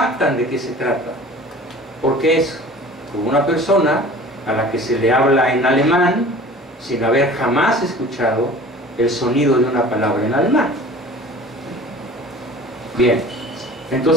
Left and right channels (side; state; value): both; normal; correlation 0.43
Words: de qué se trata, porque es como una persona a la que se le habla en alemán sin haber jamás escuchado el sonido de una palabra en alemán. Bien,